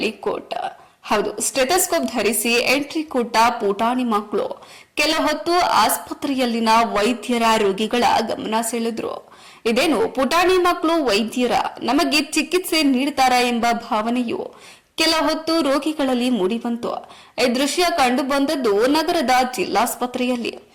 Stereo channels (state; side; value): identical; both; correlation 1.00